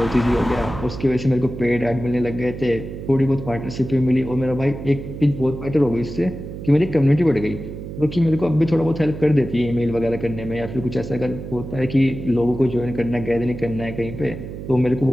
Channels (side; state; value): right; noise; hum, 9 dB below the sound